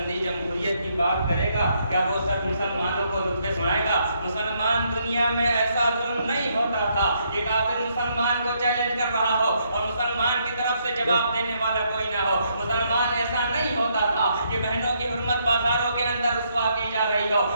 جمہوریت کی بات کرے گا؟ کیا وہ شخص مسلمانوں کو رتبے سنائے گا؟ مسلمان دنیا میں ایسا ظلم نہیں ہوتا تھا کہ کافر مسلمان کو چیلنج کر رہا ہو اور مسلمان کی طرف سے جواب دینے والا کوئی نہ ہو۔ مسلمان ایسا نہیں ہوتا تھا کہ بہنوں کی حرمت بازاروں کے اندر رسوا کی جا رہی ہو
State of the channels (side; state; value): both; inverted; correlation -0.74